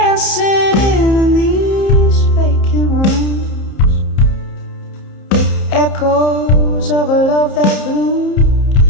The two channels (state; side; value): late; right; 30 ms